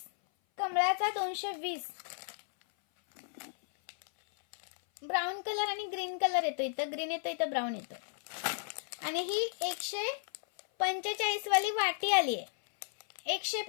कमळाचा 220. ब्राऊन कलर आणि ग्रीन कलर येतो. इथं ग्रीन येतो, इथं ब्राऊन येतो. आणि ही 145 वाली वाटी आली आहे.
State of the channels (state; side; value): silent; right; 55 dB below the other